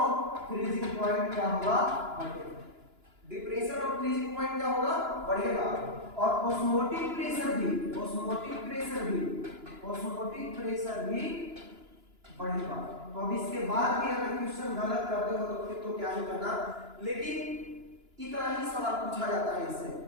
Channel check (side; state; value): left; late; 2.9 ms